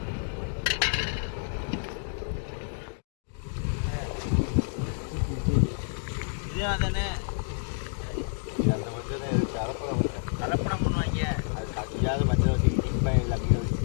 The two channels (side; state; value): right; silent; digital silence